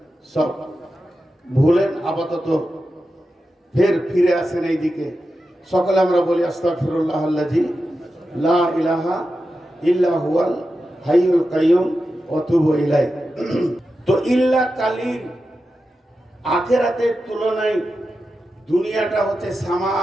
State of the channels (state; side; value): normal; both; correlation 0.91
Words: সব ভুলেন আপাতত ফের ফিরে আসেন এই দিকে। সকলে আমরা বলি আস্তাগফিরুল্লাহ আল্লাযী লা ইলাহা ইল্লা হুয়াল হাইয়ুল কাইয়ুম ওয়া তুবু ইলাইহি। তো ইল্লা কালিল, আখিরাতের তুলনায় দুনিয়াটা হচ্ছে